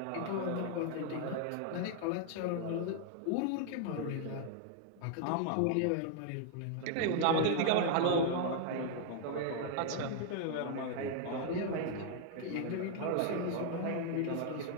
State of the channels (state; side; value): different; both; correlation 0.00